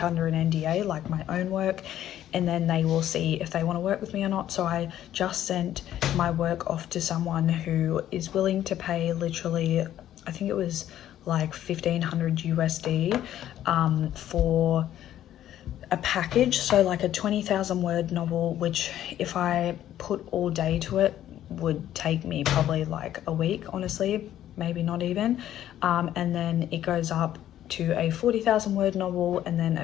under an NDA, like my own work, and then they will see if they want to work with me or not. So I just sent my work off to someone who is willing to pay literally, I think it was like 1,500 USD for a package. So like a 20,000 word novel, which if I put all day to it would take me probably like a week, honestly, maybe not even. And then it goes up to a 40,000 word novel and then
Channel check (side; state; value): right; quieter; 11.9 dB